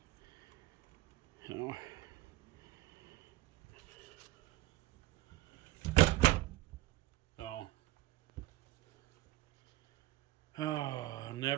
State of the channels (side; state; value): left; quieter; 17.4 dB